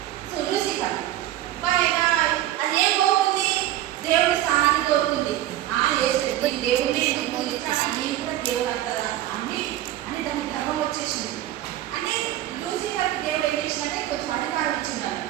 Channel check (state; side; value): quieter; left; 13.7 dB